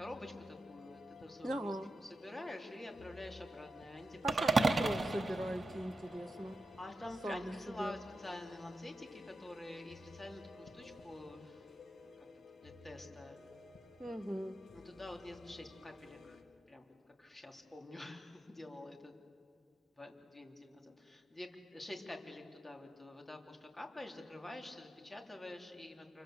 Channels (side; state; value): both; normal; correlation 0.90